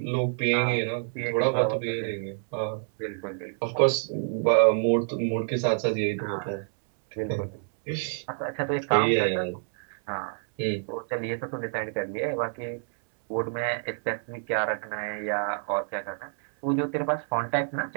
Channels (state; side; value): silent; left; 60 dB below the other